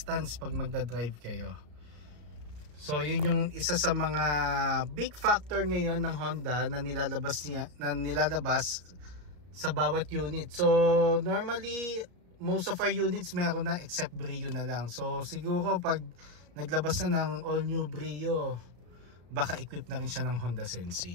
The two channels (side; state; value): left; late; 34 ms